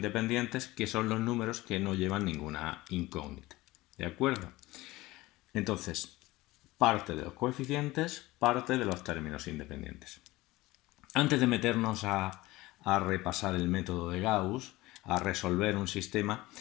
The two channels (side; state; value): right; quieter; 19.3 dB